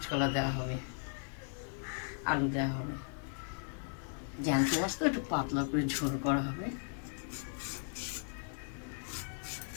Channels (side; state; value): right; silent; 53 dB below the other